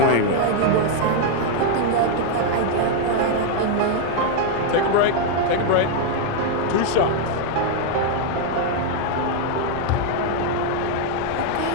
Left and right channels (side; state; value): both; different; correlation 0.00